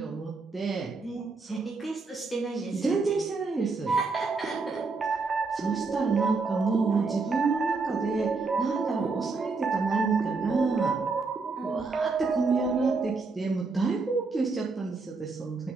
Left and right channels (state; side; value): quieter; left; 4.1 dB